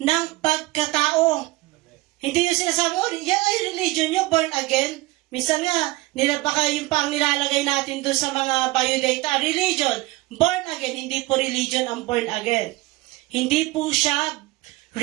ng pagkatao. Hindi yung sinasabi, yan ay religion nyo, born again. Minsan nga, baka yung pang nilalagay natin doon sa mga biodata, religion, born again, hindi po religion ang born again. Hindi po siya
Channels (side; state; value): left; quieter; 20.3 dB